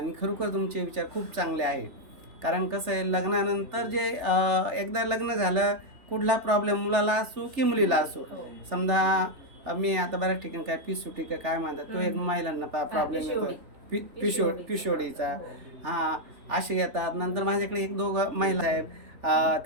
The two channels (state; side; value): late; left; 3.4 ms